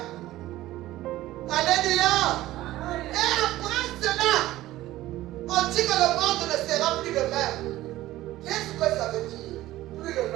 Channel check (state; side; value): quieter; left; 15.9 dB